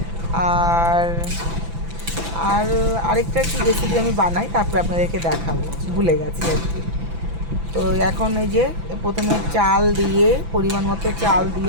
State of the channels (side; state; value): left; late; 6.0 ms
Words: আর আর আরেকটা কি রেসিপি আমি বানাই, তারপরে আপনাদেরকে দেখাবো, ভুলে গেছি আর কি। তো এখন এই যে প্রথমে চাল দিয়ে, পরিমাণ মতো চাল